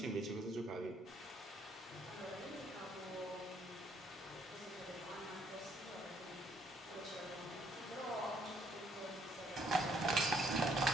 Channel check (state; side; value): normal; both; correlation 0.68